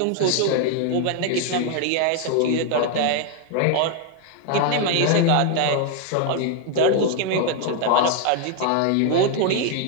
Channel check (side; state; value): both; different; correlation 0.01